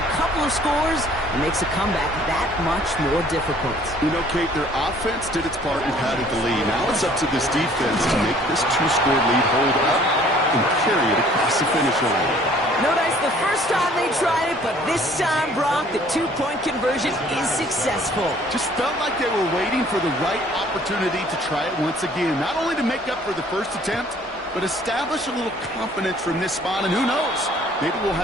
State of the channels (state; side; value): normal; both; correlation 0.56